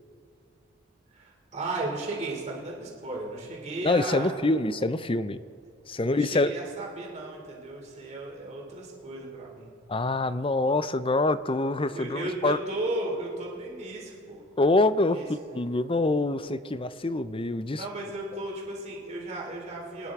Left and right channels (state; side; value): normal; both; correlation 0.47